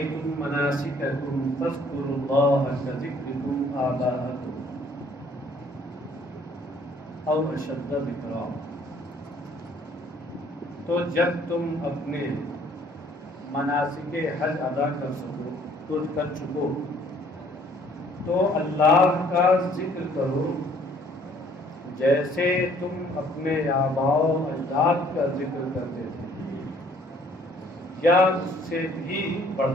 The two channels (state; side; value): normal; both; correlation 0.60